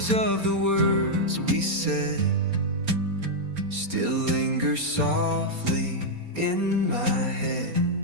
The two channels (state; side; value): late; left; 4.3 ms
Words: of the words we said still linger softly in my head.